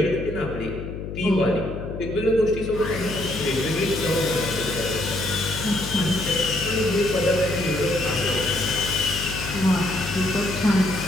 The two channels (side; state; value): left; noise; hum, 8 dB below the sound